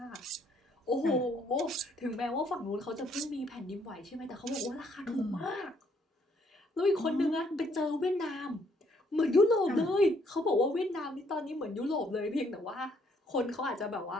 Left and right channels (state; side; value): normal; both; correlation 0.68